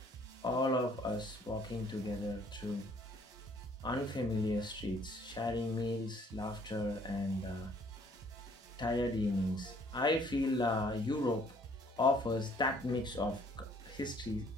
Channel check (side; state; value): both; normal; correlation 0.61